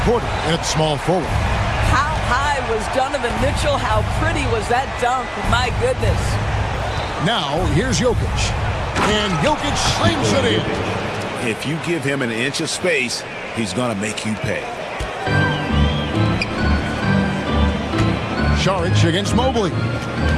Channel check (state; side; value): identical; both; correlation 1.00